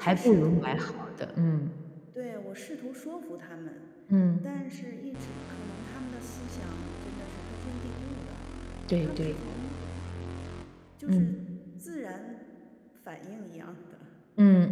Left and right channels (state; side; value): identical; both; correlation 1.00